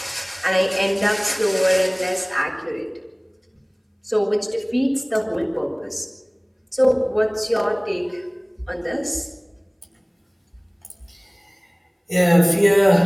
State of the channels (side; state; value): both; identical; correlation 1.00